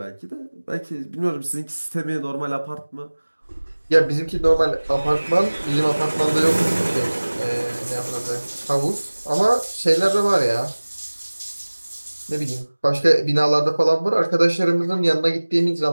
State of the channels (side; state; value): both; inverted; correlation -1.00